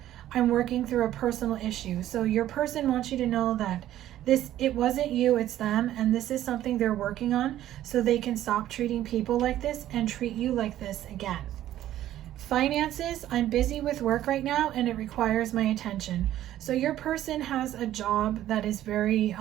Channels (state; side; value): quieter; left; 12.9 dB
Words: I'm working through a personal issue. So your person wants you to know that it wasn't you, it's them, and this is something they're working on so they can stop treating people like this and treat you like this again. Finances, I'm busy with work right now and it requires my attention. So your person has a job that is very